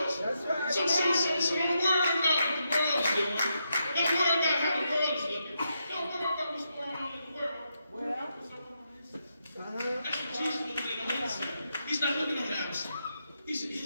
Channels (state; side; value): inverted; both; correlation -0.83